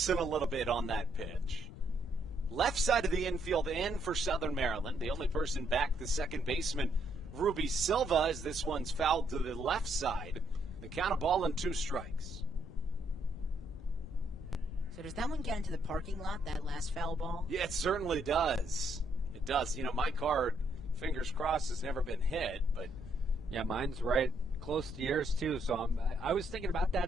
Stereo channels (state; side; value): noise; left; rumble, 13 dB below the sound